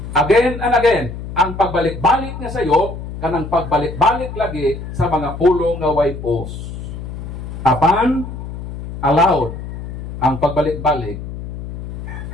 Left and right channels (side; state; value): left; noise; hum, 9 dB below the sound